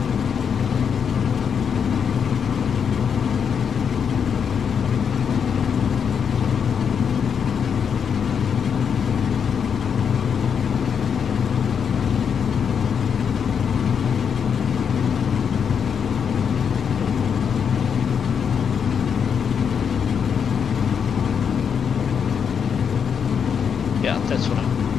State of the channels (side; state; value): right; quieter; 7.0 dB